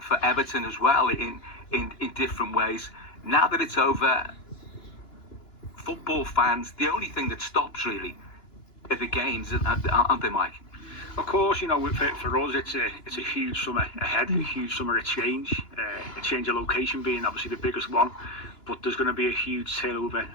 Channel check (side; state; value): right; late; 2.9 ms